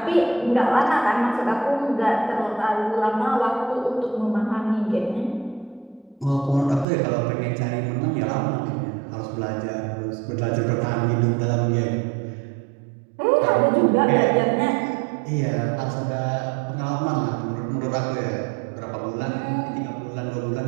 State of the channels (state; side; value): drops out; left; at 6.9 s